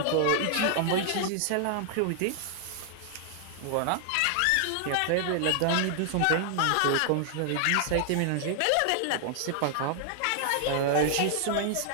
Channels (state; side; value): different; both; correlation 0.00